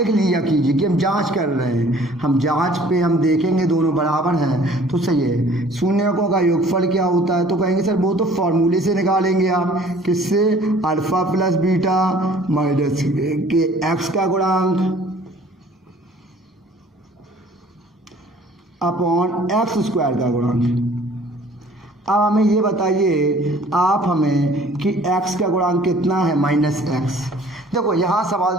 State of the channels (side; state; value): both; normal; correlation 0.53